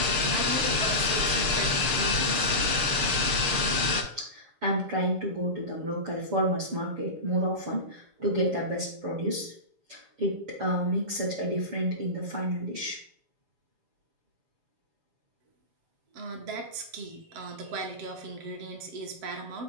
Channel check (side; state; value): left; late; 6.7 ms